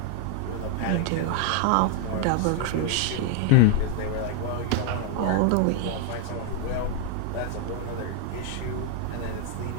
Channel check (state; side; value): different; both; correlation 0.00